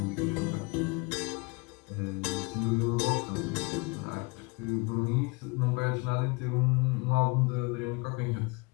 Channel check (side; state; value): right; quieter; 28.0 dB